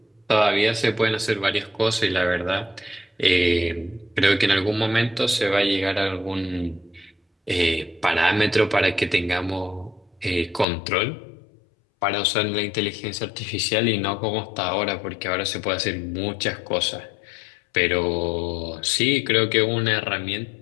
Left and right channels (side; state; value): right; drops out; at 10.7 s